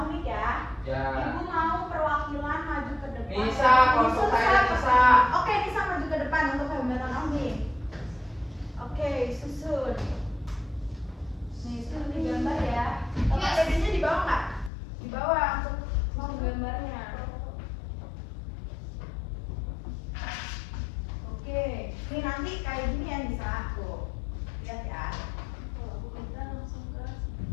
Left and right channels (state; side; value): drops out; right; at 14.7 s